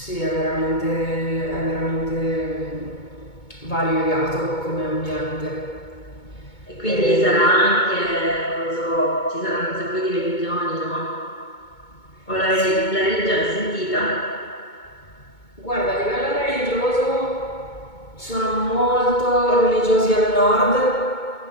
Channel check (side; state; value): right; late; 2.2 ms